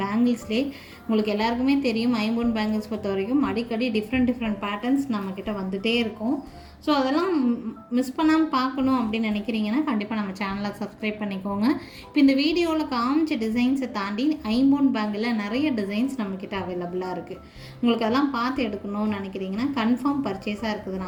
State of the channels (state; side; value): identical; both; correlation 1.00